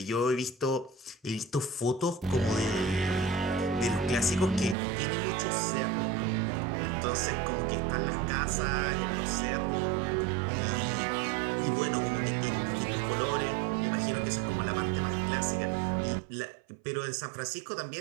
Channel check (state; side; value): drops out; left; at 4.8 s